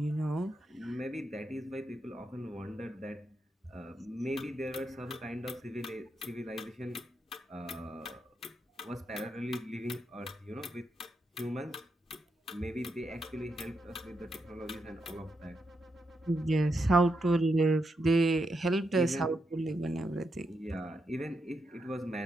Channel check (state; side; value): normal; both; correlation 0.83